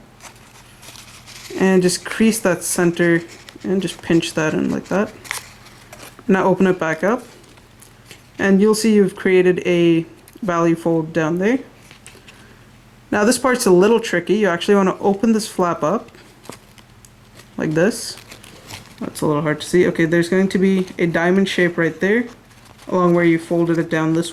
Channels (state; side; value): identical; both; correlation 1.00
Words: And just crease that center and just pinch that in like that. Now open it back up. And you'll see you've created a value fold down there. Now this part's a little tricky. You actually want to open this flap up like this. That's a little hard to see. Okay, there's going to be a diamond shape right there along where you folded it down this